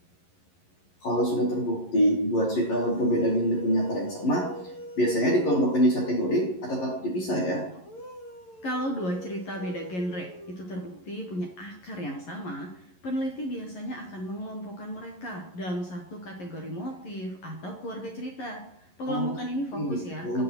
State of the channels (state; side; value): late; right; 11 ms